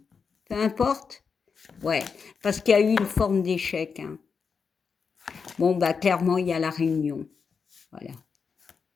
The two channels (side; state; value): right; quieter; 5.7 dB